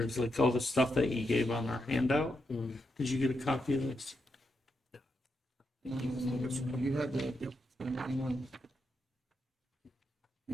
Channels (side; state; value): both; normal; correlation 0.83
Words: like all the stuff that you gave on our handout. Did you get a copy of this? You had the, anyone?